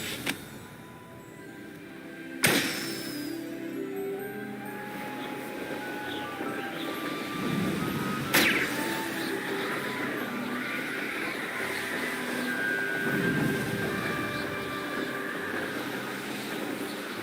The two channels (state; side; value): identical; both; correlation 1.00